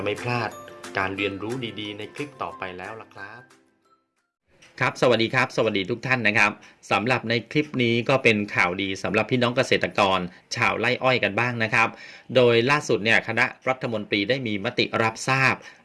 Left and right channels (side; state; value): both; identical; correlation 1.00